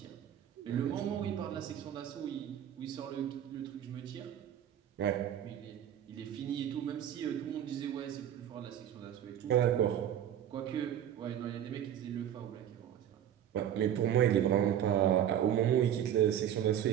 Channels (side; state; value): left; quieter; 10.2 dB